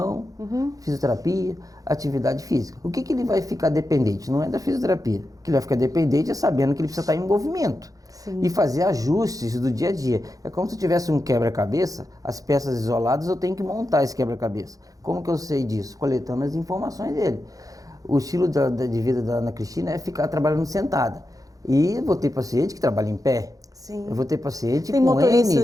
fisioterapia, atividade física. O que ele vai ficar dependente? Não é da fisioterapia. O que ele vai ficar dependente é sabendo que ele precisa estar em movimento. Sim. E fazer ajustes do dia a dia. É como se eu tivesse um quebra-cabeça, as peças isoladas, eu tenho que montar esse quebra-cabeça. Como que eu sei disso? Coletando as informações dele. O estilo de vida da Ana Cristina é ficar trabalhando sentada. E eu vou ter paciente que trabalha em pé. Sim. Eu vou ter paciente tem com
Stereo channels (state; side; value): late; left; 0.17 ms